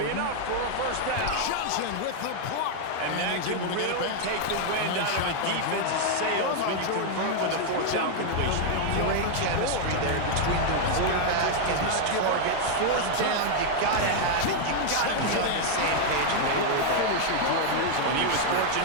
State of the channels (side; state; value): both; different; correlation 0.00